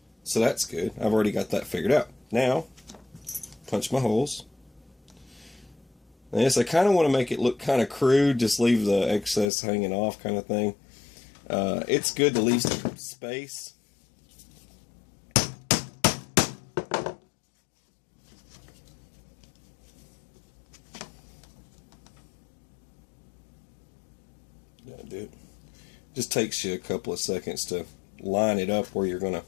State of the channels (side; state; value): right; drops out; at 9.5 s